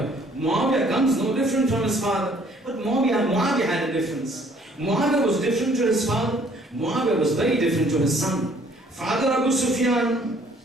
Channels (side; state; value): both; normal; correlation 0.60